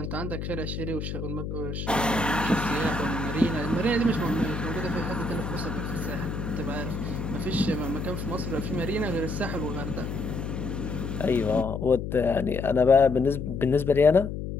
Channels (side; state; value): left; noise; hum, 5 dB below the sound